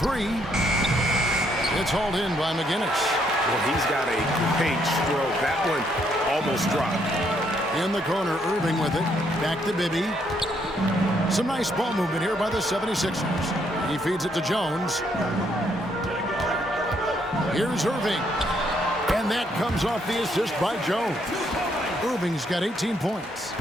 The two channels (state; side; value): normal; both; correlation 0.72